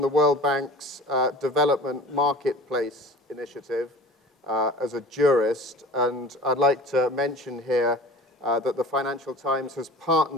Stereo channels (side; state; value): both; normal; correlation 0.41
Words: the World Bank's Development Marketplace Initiative as a jurist, and I'd like to mention here that the Financial Times has